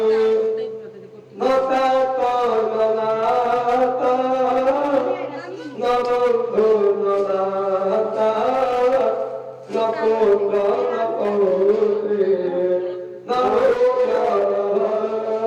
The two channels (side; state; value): both; identical; correlation 1.00